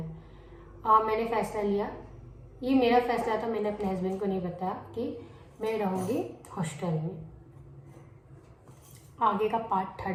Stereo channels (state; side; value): identical; both; correlation 1.00